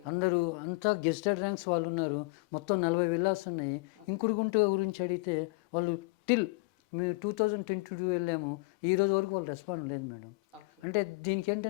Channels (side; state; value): right; quieter; 27.8 dB